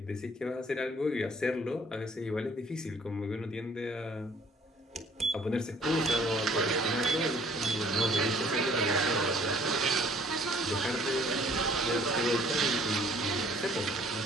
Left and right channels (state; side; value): normal; both; correlation 0.57